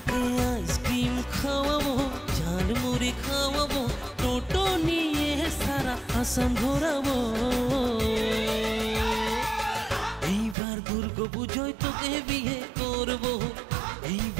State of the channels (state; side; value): drops out; left; at 10.6 s